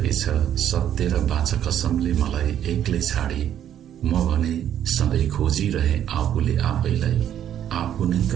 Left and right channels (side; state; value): left; quieter; 10.3 dB